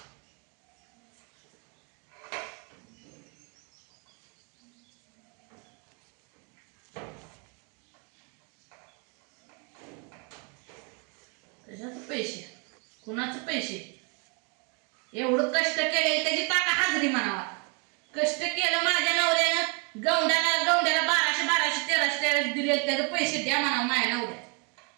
त्याच्यात पैसे कुणाचं पैसे. एवढं कष्ट केले त्याची ताका हाजरी म्हणावा. कष्ट केलं माझ्या नवऱ्यानं गवंड्याला 1200 1300 दिले. त्याचे पैसे द्या म्हणावं माझ्या नवऱ्या.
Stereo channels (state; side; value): quieter; left; 34.8 dB